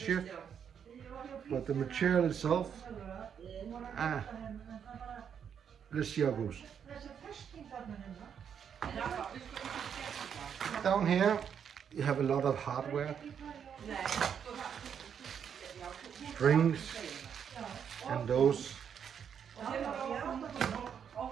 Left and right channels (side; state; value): left; quieter; 7.8 dB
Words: But the material itself, let's see how it goes. Down here, you have a lot of hardware. Strings and those